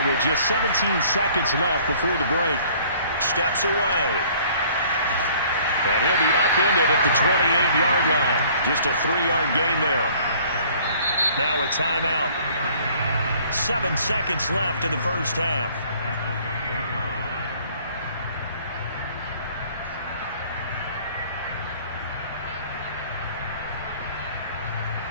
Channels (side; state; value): both; inverted; correlation -0.55